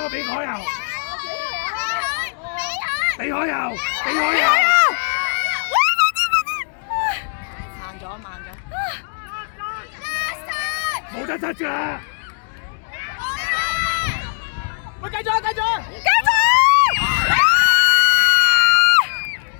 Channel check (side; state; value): right; silent; digital silence